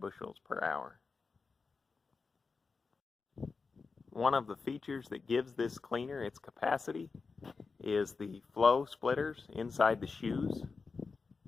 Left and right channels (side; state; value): right; quieter; 4.6 dB